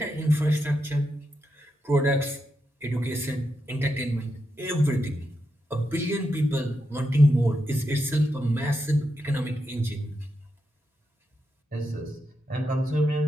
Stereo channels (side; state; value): both; normal; correlation 0.85